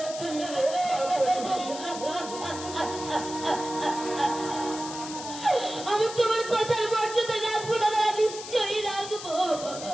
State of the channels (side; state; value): left; noise; hiss, 11 dB below the sound